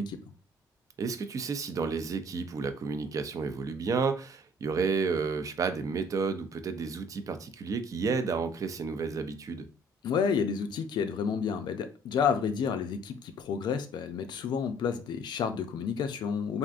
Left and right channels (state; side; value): normal; both; correlation 0.56